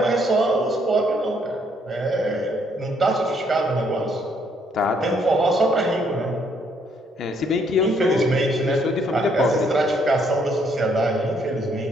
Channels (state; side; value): normal; both; correlation 0.69